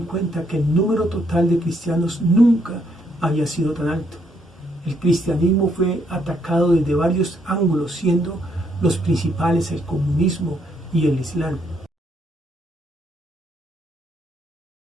que el número total de cristianos nunca había sido tan alto. El cristianismo fue atacado desde varios ángulos, siendo los principales el comunismo y el Islam.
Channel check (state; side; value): normal; both; correlation 0.72